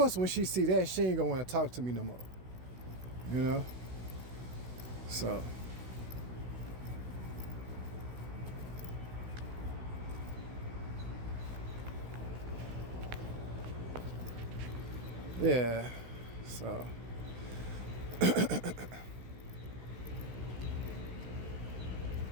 when she see that, she ain't gonna want to talk to me no more. So. Yeah. So.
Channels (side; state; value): left; late; 16 ms